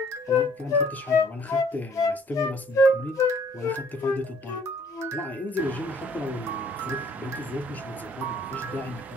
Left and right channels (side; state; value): both; normal; correlation 0.60